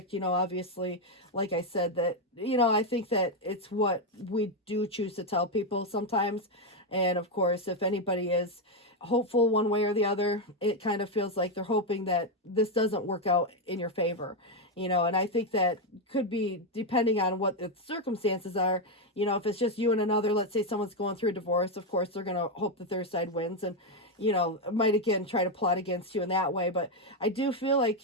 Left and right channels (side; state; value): both; normal; correlation 0.04